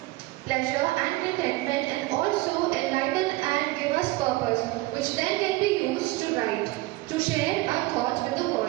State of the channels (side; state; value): left; quieter; 19.9 dB